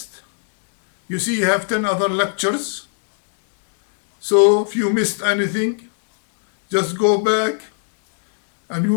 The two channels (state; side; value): silent; right; digital silence